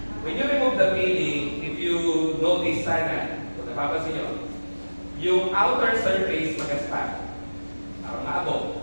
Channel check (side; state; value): both; inverted; correlation -1.00